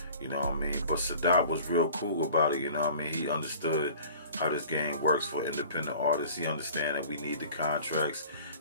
you know what I mean? But Sadat was real cool about it, you know what I mean? He understood how this game works for independent artists. He understand that we need the contracts,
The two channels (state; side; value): inverted; both; correlation -0.45